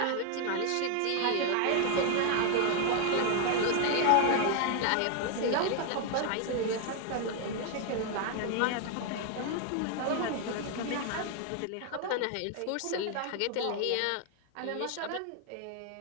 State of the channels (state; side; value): different; both; correlation 0.00